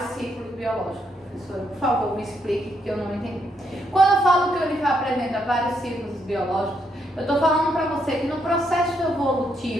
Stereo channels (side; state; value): both; normal; correlation 0.76